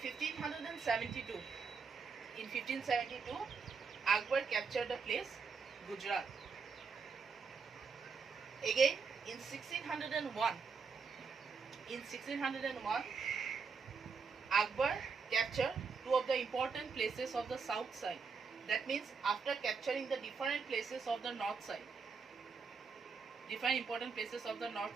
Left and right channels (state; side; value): quieter; left; 5.2 dB